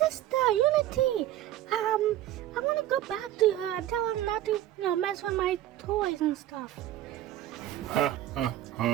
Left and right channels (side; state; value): left; quieter; 13.2 dB